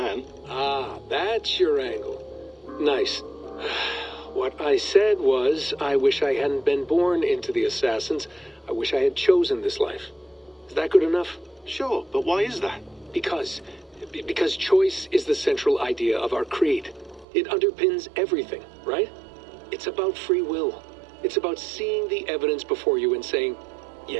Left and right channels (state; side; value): drops out; left; at 17.2 s